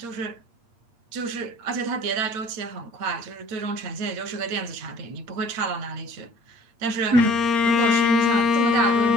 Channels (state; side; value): late; left; 8.6 ms